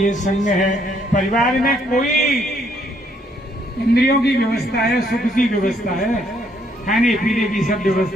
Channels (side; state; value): both; normal; correlation 0.69